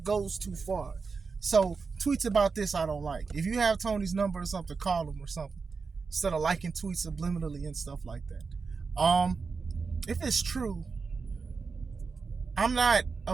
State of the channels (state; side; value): quieter; left; 4.8 dB